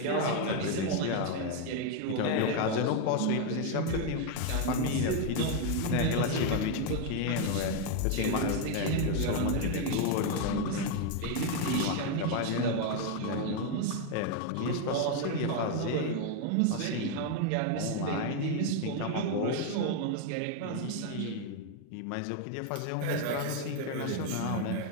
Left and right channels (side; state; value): both; different; correlation 0.01